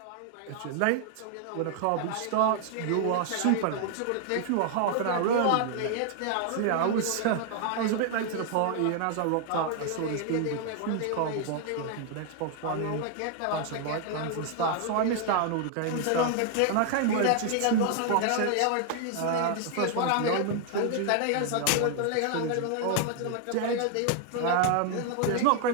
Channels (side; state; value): both; different; correlation 0.00